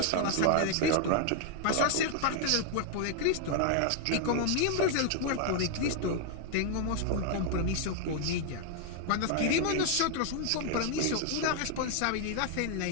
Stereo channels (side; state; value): both; different; correlation 0.00